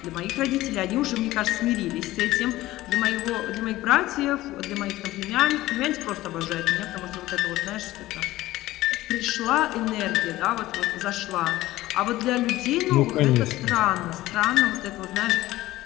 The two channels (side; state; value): right; quieter; 16.7 dB